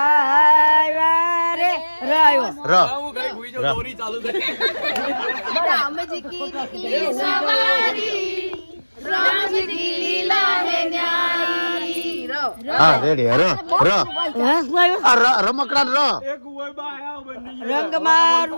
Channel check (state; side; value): inverted; both; correlation -1.00